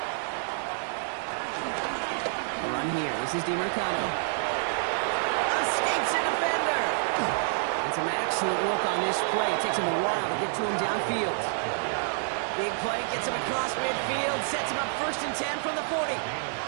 A run here. This is DiMercado. Escapes a defender. And some excellent work on this play. It takes him a while to get to him downfield. Big play gets him across midfield. Sets him up first and 10 from the 40.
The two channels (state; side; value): silent; left; digital silence